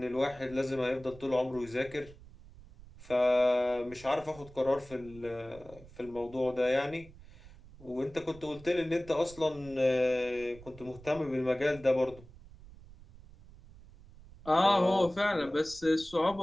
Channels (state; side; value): noise; right; rumble, 20 dB below the sound